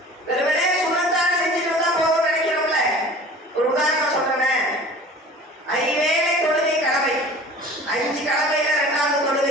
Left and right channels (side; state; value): both; normal; correlation 0.43